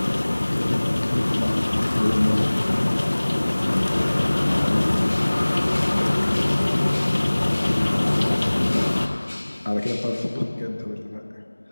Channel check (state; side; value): inverted; both; correlation -1.00